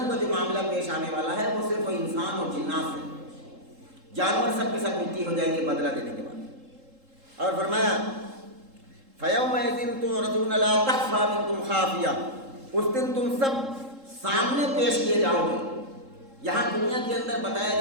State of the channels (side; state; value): left; late; 3.7 ms